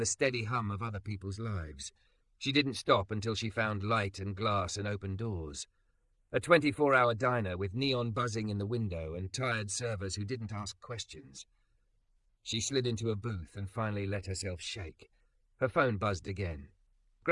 the steady hum of other people's lives. She didn't stop until she found light and glass and open doors. A 24-hour diner with neon buzzing in the window and tired servers who didn't ask questions. She slid into a booth and finally let herself shake. Her phone buzzed again.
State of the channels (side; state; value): both; identical; correlation 1.00